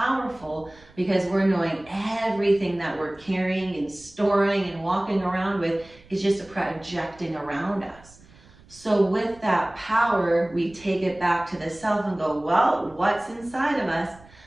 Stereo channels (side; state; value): right; noise; rumble, 25 dB below the sound